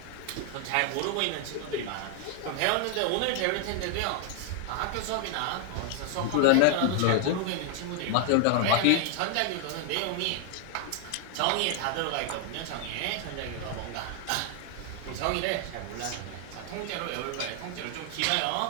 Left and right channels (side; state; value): both; different; correlation 0.00